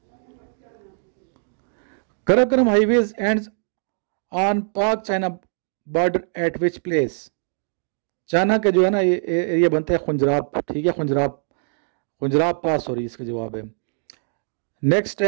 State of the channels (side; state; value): left; silent; digital silence